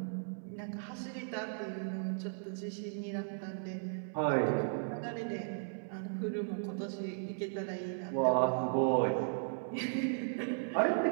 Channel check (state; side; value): silent; left; 54 dB below the other